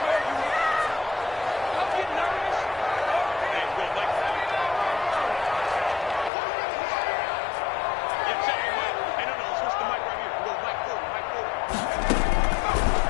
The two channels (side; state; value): right; drops out; at 6.3 s